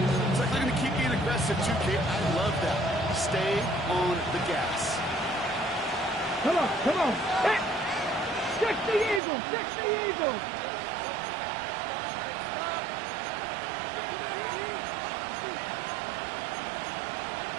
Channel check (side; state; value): left; drops out; at 9.2 s